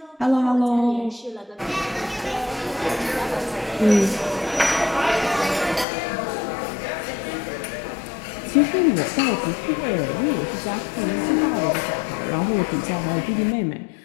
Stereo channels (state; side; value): drops out; right; at 5.9 s